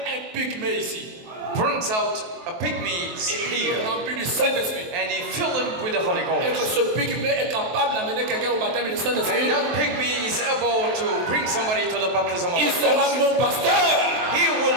un pygmée ici, brings out a pygmy here, rempli du Saint-Esprit, and he fills him with the Holy Ghost, et que ce pygmée est capable d'amener quelqu'un au baptême du Saint-Esprit, and that pygmy is able to bring somebody to the baptism of the il sera mon pasteur. He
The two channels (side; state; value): left; late; 23 ms